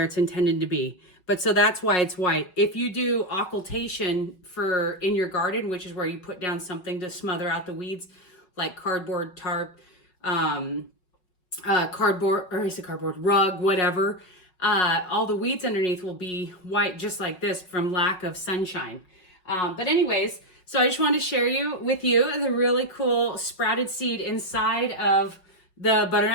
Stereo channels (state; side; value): late; right; 5.5 ms